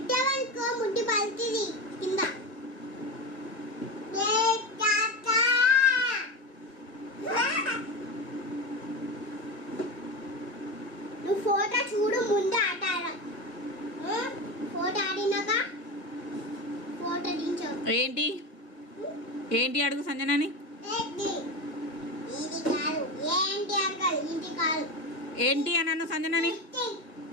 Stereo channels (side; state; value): right; late; 1.7 ms